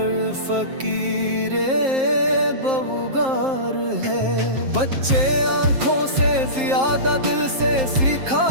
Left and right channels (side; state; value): left; late; 7.6 ms